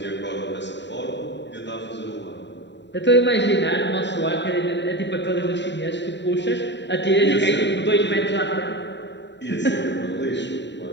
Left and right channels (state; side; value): late; right; 0.52 ms